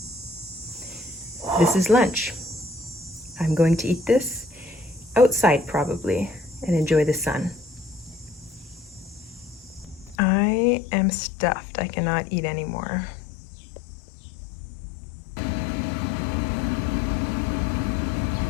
This is lunch. I'm going to eat this outside probably and enjoy the sun. I am stuffed. I cannot eat anymore.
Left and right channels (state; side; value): drops out; right; at 10.2 s